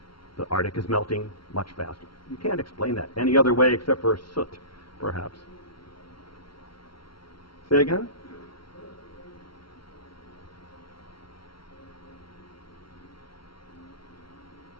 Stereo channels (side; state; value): right; late; 0.74 ms